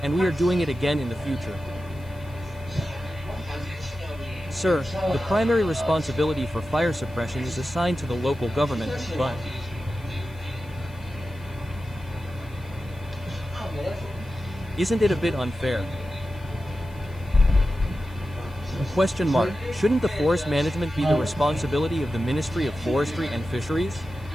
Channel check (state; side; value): noise; left; hiss, 27 dB below the sound